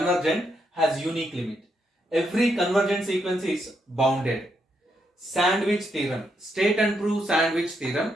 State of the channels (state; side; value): normal; both; correlation 0.79